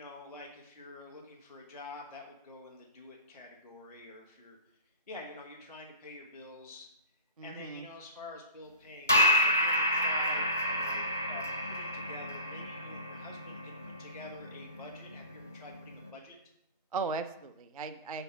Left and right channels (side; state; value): both; inverted; correlation -0.37